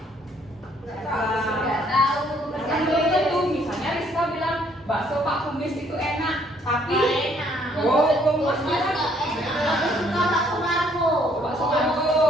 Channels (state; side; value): normal; both; correlation 0.65